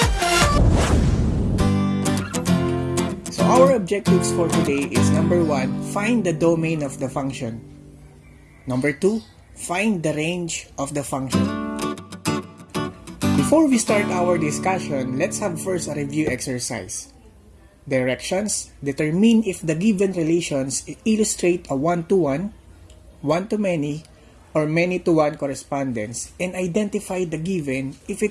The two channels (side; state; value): both; identical; correlation 1.00